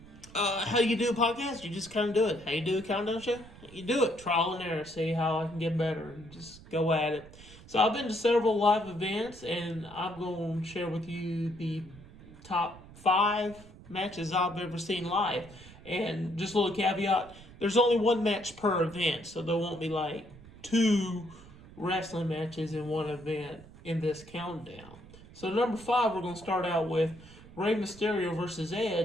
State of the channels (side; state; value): right; noise; rumble, 19 dB below the sound